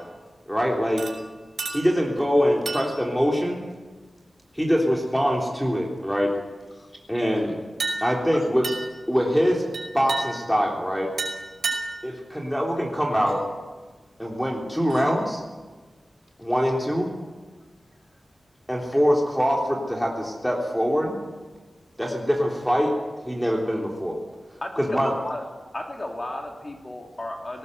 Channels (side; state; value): both; normal; correlation 0.97